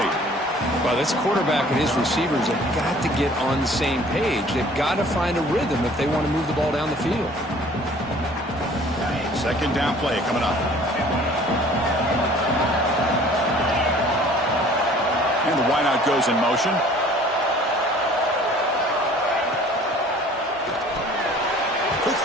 Well, this quarterback and his receivers have got to get on the same page. They've got to find a rhythm if they want to move the ball down the field. Second down play coming up. And the wideout goes in motion. Quick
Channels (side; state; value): both; normal; correlation 0.51